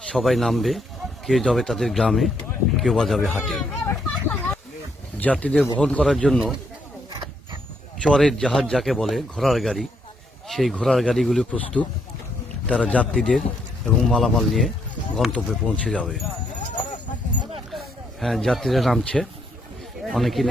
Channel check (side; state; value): both; normal; correlation 0.74